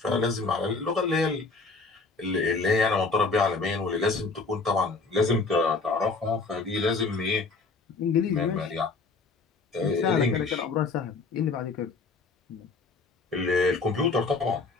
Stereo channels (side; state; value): right; quieter; 4.0 dB